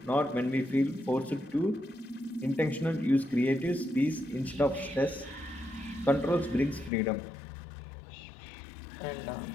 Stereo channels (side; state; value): right; drops out; at 6.9 s